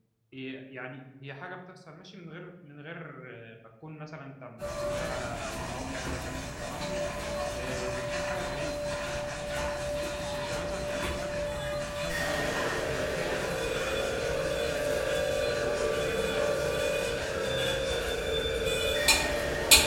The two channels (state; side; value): identical; both; correlation 1.00